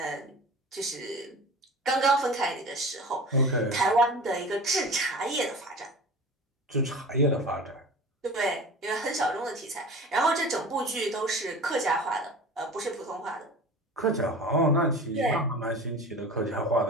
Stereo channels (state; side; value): normal; both; correlation 0.37